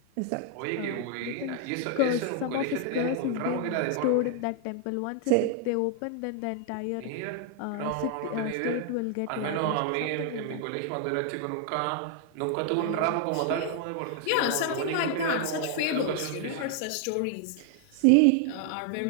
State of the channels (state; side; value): different; both; correlation 0.00